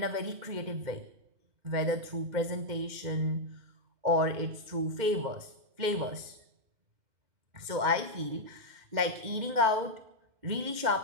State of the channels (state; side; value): late; left; 2.1 ms